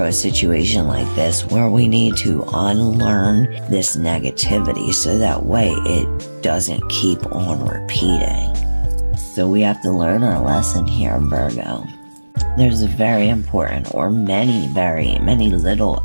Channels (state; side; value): inverted; both; correlation -1.00